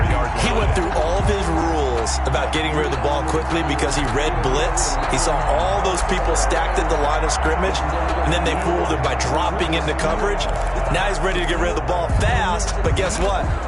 He went through all of his rules about getting rid of the ball quickly because he read blitz. He saw all those people stacked at the line of scrimmage, and then they fooled him by dropping into coverage. Now he's ready to get rid of the ball fast, but guess what?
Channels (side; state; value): both; identical; correlation 1.00